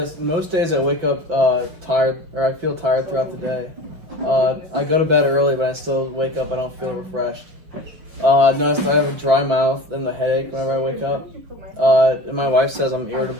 most days I wake up tired, or I feel tired throughout the day. I go to bed early, but I still wake up, I don't feel refreshed. I've noticed I have a dry mouth and a headache whenever I wake up. And my wife says I'm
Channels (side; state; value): left; late; 6.1 ms